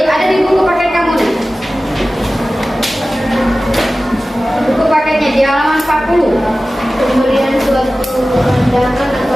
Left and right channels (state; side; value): normal; both; correlation 0.96